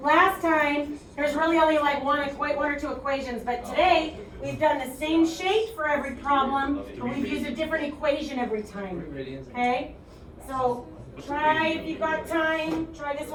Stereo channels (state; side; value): identical; both; correlation 1.00